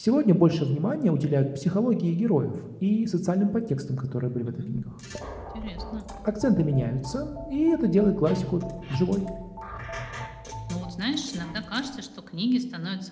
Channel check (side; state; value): both; identical; correlation 1.00